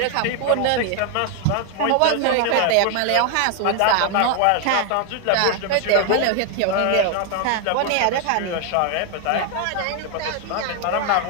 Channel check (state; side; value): different; both; correlation 0.00